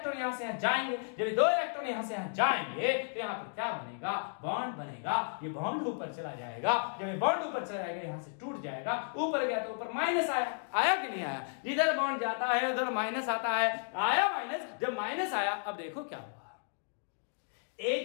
यहाँ से यहाँ जाएंगे। जब ये 2 इलेक्ट्रॉन यहाँ से यहाँ जाएंगे तो यहाँ पर क्या बनेगा? बॉन्ड बनेगा। ये बॉन्ड ऊपर चला जाएगा। जब ये बॉन्ड ऊपर चला जाएगा यहाँ से टूट जाएगा। ऊपर गया तो ऊपर माइनस आया। आया कि नहीं आया? इधर बॉन्ड जाता है उधर माइनस आता है। आया माइनस। जब माइनस आया अब देखो क्या हुआ,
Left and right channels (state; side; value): silent; right; digital silence